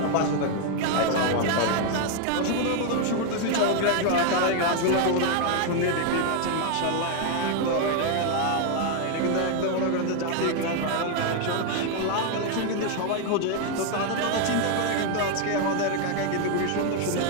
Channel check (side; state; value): both; different; correlation 0.01